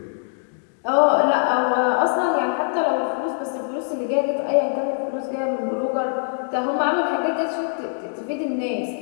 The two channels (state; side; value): silent; right; digital silence